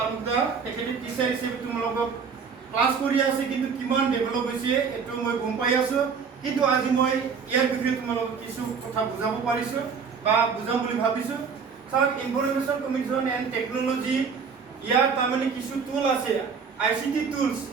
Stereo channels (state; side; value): quieter; left; 5.9 dB